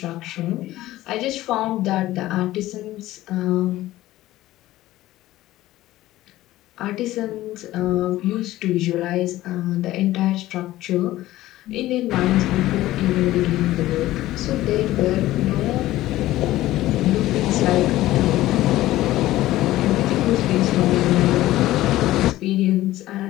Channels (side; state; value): right; quieter; 15.8 dB